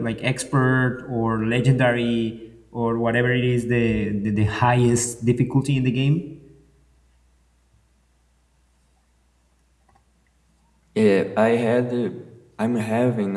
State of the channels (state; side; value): identical; both; correlation 1.00